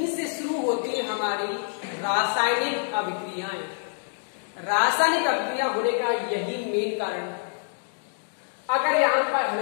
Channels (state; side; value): silent; right; digital silence